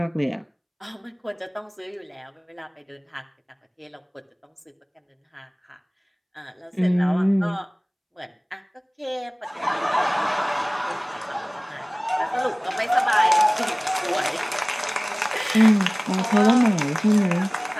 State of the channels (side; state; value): both; identical; correlation 1.00